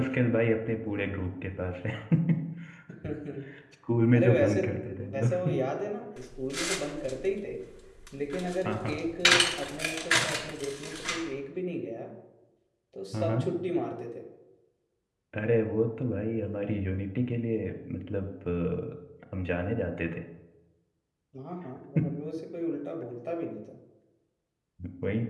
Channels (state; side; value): identical; both; correlation 1.00